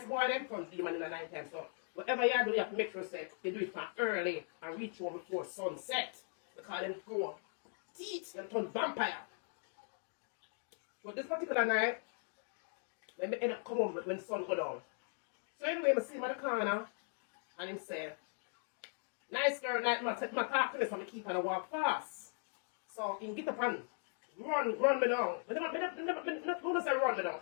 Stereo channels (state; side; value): silent; right; 52 dB below the other